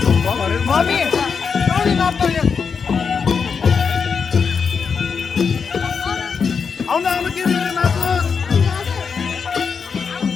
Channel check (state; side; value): quieter; right; 5.9 dB